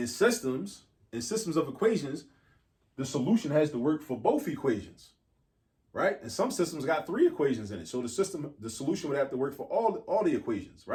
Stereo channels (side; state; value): both; identical; correlation 1.00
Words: systems of equations, the solution has to work for both equations, right? And some systems got 3 equations in it. So the solution would have to work for all the equations,